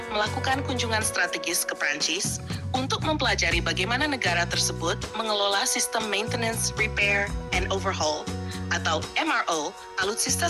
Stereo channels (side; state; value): both; identical; correlation 1.00